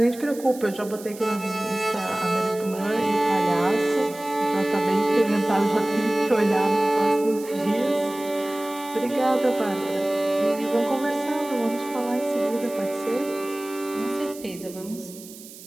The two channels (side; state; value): right; noise; hiss, 17 dB below the sound